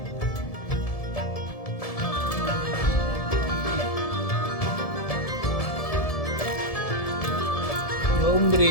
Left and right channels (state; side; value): late; right; 1.7 ms